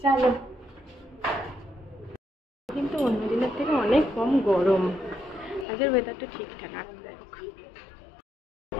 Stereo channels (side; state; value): right; drops out; at 5.7 s